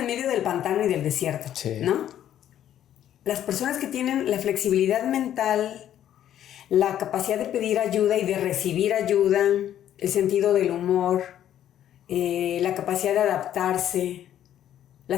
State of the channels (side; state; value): right; quieter; 11.1 dB